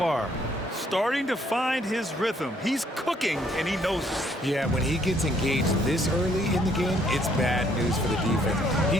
starting to find his rhythm. He's cooking, and he knows it. Yeah, when he gets engaged this early in the game, it's bad news for the defense. He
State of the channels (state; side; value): normal; both; correlation 0.66